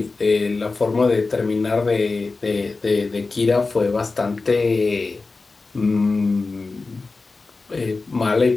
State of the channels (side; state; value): right; quieter; 3.8 dB